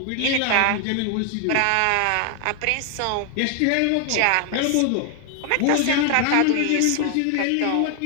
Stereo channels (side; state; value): both; different; correlation 0.00